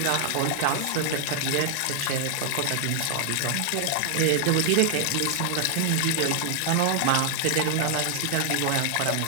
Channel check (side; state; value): both; different; correlation 0.00